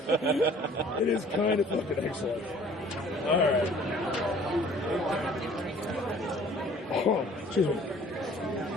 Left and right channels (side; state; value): both; normal; correlation 0.53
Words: is kind of fucking excellent. All right. Oh, excuse me.